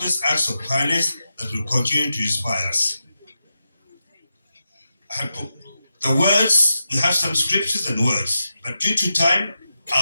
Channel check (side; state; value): both; inverted; correlation -0.88